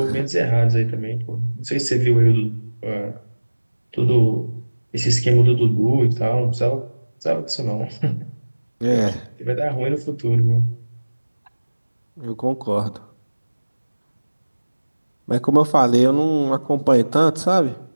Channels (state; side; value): inverted; both; correlation -1.00